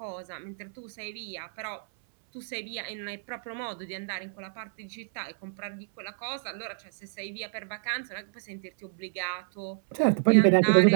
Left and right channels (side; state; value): left; silent; 58 dB below the other